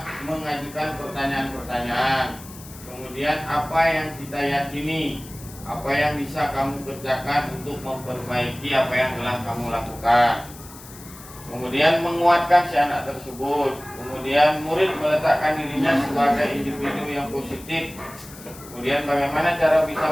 mengajukan pertanyaan-pertanyaan. Kemudian apa yang kita yakini, apa yang bisa kamu kerjakan untuk memperbaiki apa yang telah kamu lakukan. Kemudian menguatkan si anak tersebut. Kemudian murid meletakkan dirinya sebagai individu yang positif. Kemudian bagaimana cara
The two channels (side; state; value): left; noise; hiss, 18 dB below the sound